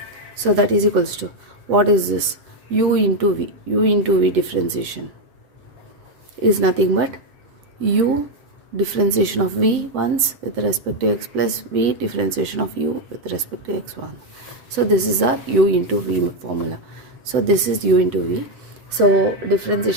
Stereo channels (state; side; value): late; left; 7.9 ms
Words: So that is equals to, what is this? U into v differentiation is nothing but u differentiation of v once with respect to x plus v differentiation of u with respect to x1. So this is our u into v formula. So this is u into v. So